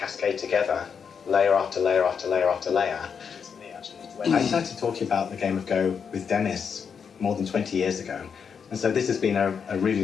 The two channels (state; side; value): quieter; right; 6.6 dB